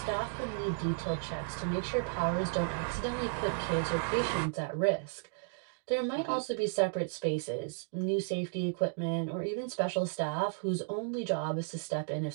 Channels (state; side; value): silent; left; digital silence